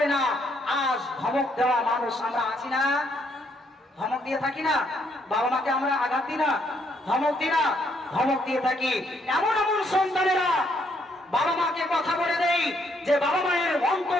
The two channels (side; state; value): both; normal; correlation 0.71